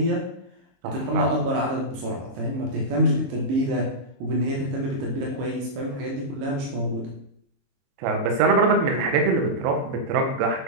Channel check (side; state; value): left; late; 23 ms